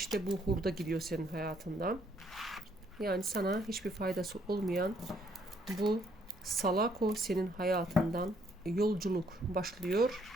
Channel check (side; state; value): both; normal; correlation 0.68